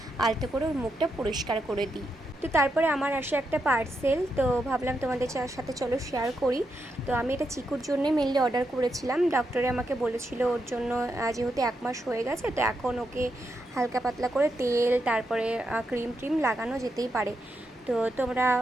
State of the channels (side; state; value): both; normal; correlation 0.83